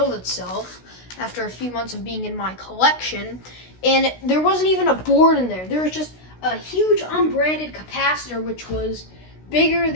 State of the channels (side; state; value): right; late; 16 ms